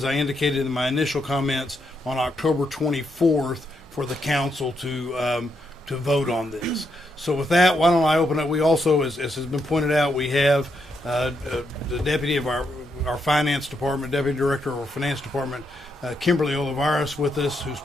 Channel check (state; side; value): normal; both; correlation 0.79